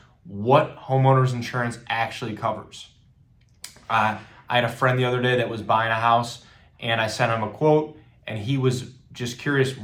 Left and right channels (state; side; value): identical; both; correlation 1.00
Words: what homeowners insurance actually covers. I had a friend the other day that was buying a house and I sent him a quote and he was just curious,